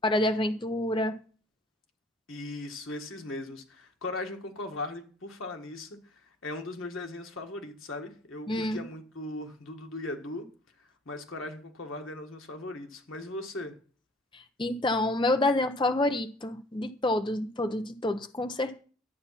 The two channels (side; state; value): both; normal; correlation 0.54